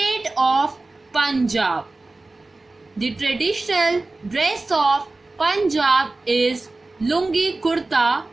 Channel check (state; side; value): quieter; left; 3.2 dB